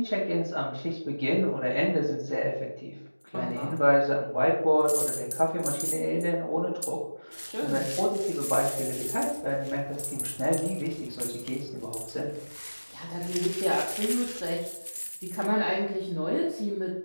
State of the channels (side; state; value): both; inverted; correlation -1.00